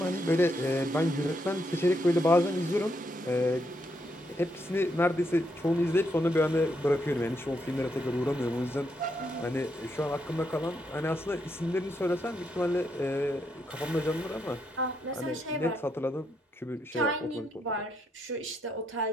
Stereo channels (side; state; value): both; normal; correlation 0.78